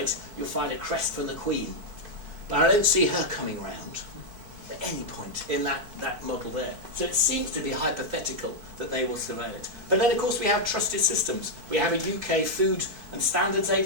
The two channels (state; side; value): late; left; 4.6 ms